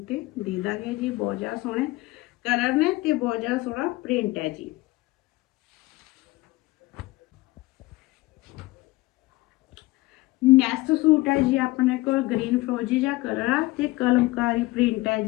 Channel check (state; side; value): quieter; right; 20.1 dB